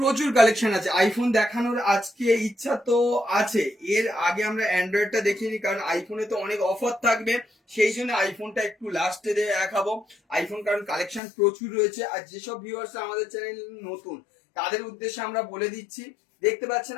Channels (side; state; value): right; drops out; at 11.2 s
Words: কালেকশন আছে আইফোন দেখানোর। আজকে ইচ্ছা তো আছে, এর আগে আমরা অ্যান্ড্রয়েডটা দেখিনি, কারণ আইফোনে তো অনেক অফার থাকবে, সেই জন্য আইফোনটা একটু লাস্টে দেখাবো। আইফোন কারণ কালেকশন প্রচুর রয়েছে। আর যেসব ভিউয়ার্স আমাদের চ্যানেল নতুন তাদের উদ্দেশ্যে আমরা বলে দিচ্ছি, দেখতে পাচ্ছেন